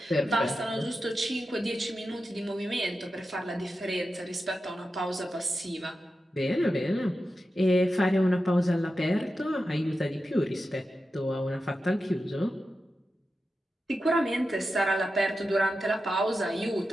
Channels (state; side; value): normal; both; correlation 0.91